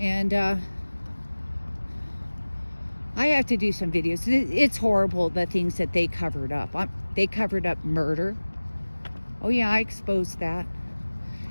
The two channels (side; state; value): both; inverted; correlation -1.00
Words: I have to do some videos. It's horrible, the things that they covered up. They covered up murder. Oh yeah, I exposed that.